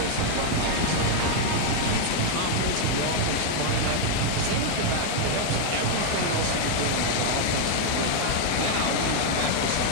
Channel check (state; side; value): different; both; correlation 0.00